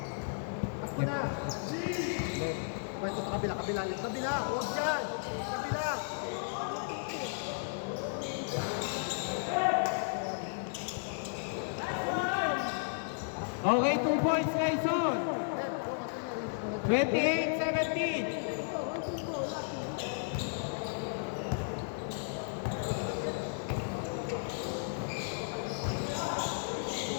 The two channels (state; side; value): silent; right; 55 dB below the other